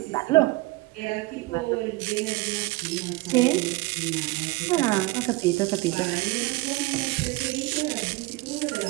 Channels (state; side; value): quieter; left; 21.7 dB